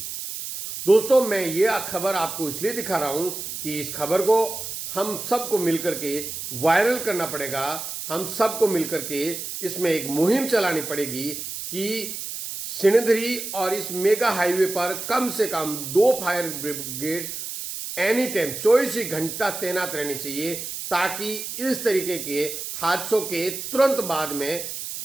दोस्तों, मैं ये खबर आपको इसलिए दिखा रहा हूं कि इस खबर को हम सबको मिलकर के वायरल करना पड़ेगा। हम सबको मिलकर के इसमें एक मुहिम चलानी पड़ेगी कि सिणधरी और इस मेगा हाईवे पर कम से कम 2 फायर ब्रिगेड एनी टाइम 24 ही घंटा तैनात रहनी चाहिए, ताकि इस तरीके के हादसों के तुरंत बाद में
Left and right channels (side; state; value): right; noise; hiss, 7 dB below the sound